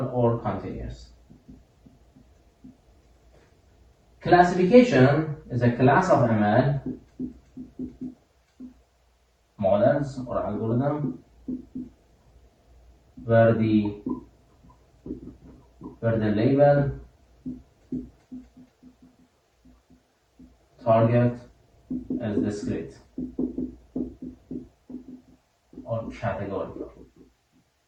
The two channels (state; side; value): identical; both; correlation 1.00